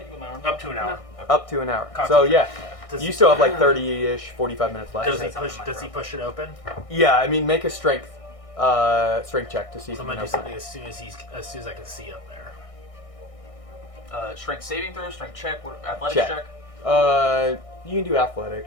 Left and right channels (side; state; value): right; late; 1.6 ms